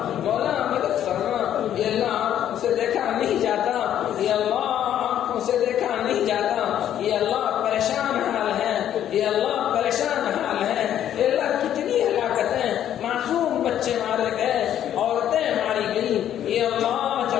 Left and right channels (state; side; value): quieter; right; 10.7 dB